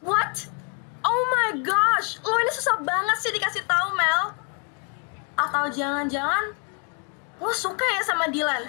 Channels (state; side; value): quieter; right; 36.7 dB